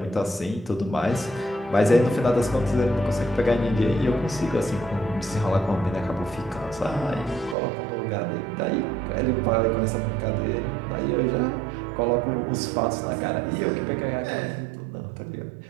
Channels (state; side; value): drops out; left; at 7.6 s